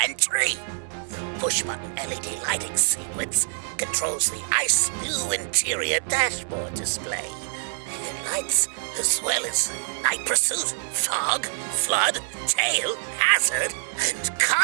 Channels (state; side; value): silent; left; digital silence